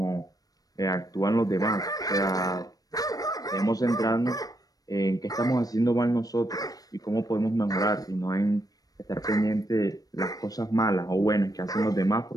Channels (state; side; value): late; right; 0.18 ms